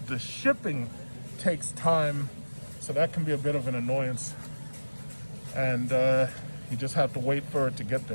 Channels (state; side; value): inverted; both; correlation -1.00